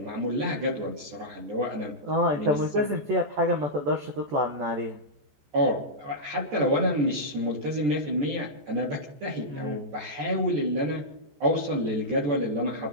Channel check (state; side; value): late; left; 14 ms